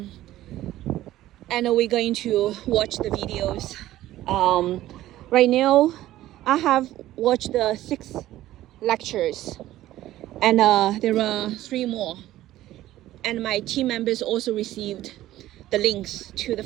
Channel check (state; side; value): quieter; left; 14.6 dB